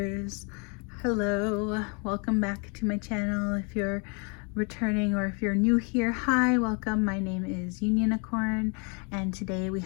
Hello, welcome back to my channel. If you're returning or if you're new here, hi, welcome. My name is Unionicorn, and today we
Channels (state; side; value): quieter; right; 34.6 dB